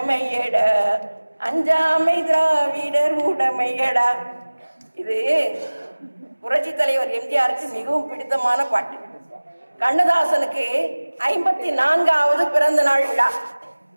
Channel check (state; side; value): inverted; both; correlation -1.00